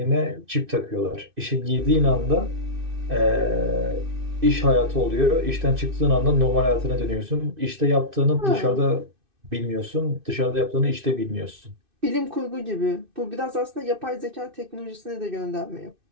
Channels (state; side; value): late; left; 2.6 ms